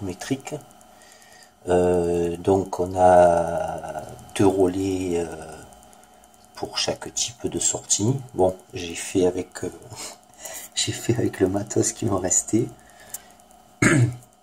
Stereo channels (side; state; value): both; identical; correlation 1.00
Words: Donc, on a deux relais pour chaque type de sortie. Bon, j'ai fait avec le matos qui me restait.